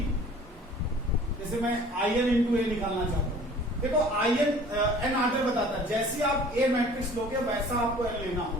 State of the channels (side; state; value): both; normal; correlation 0.49